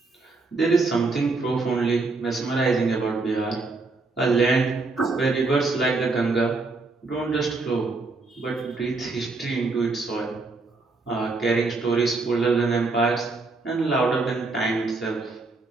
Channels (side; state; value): left; quieter; 3.7 dB